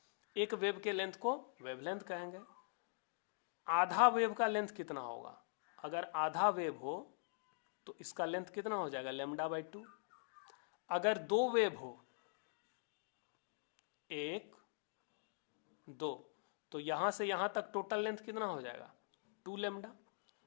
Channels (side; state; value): right; silent; digital silence